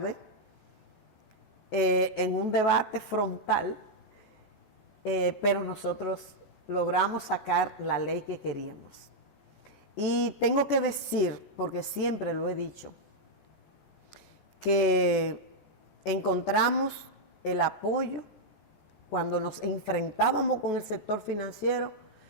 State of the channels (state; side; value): late; right; 14 ms